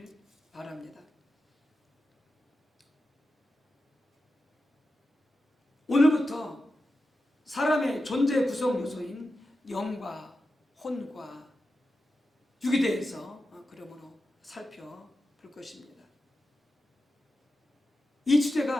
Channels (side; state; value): both; normal; correlation 0.91